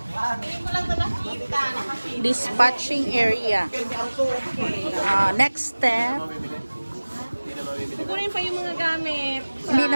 Dispatching area. Next step. Kukunin pa yung mga gamit. Hindi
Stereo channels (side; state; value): both; inverted; correlation -1.00